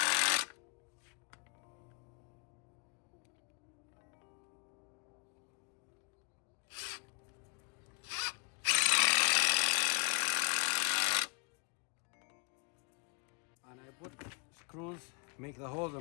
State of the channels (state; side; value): quieter; right; 38.8 dB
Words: And I put screws, make the holes